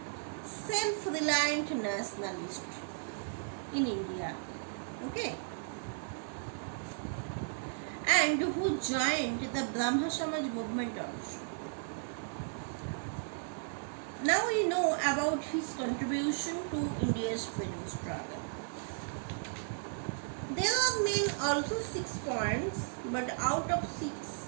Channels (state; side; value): silent; left; digital silence